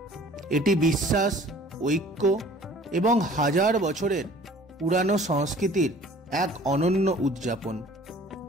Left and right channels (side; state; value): both; normal; correlation 0.50